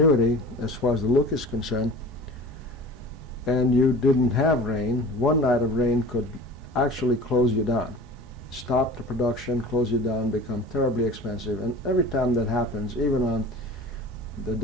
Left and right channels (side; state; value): both; normal; correlation 0.40